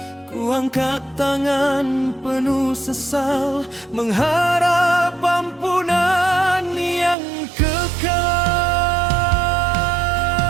Ku angkat tangan penuh sesal, mengharap ampunan yang kekal.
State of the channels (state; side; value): drops out; left; at 7.2 s